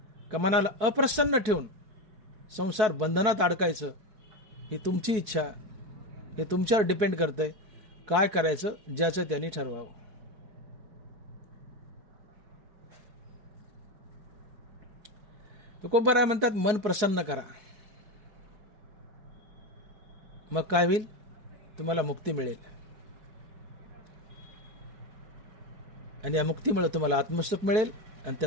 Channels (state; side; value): late; left; 4.6 ms